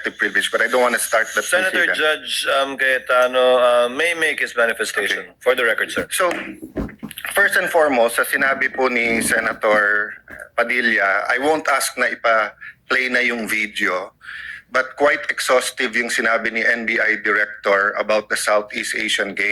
privilege, but I don't want to start that. Senator Judge Cayetano may make his manifestation. Okay. For the record, sir. So, first and foremost, sa sinabi po ni Senator Padilla, I won't ask na ipa-play na yung video, but quite exhaustive yung sinabi ni NBI Director about the Southeast Asian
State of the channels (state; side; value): identical; both; correlation 1.00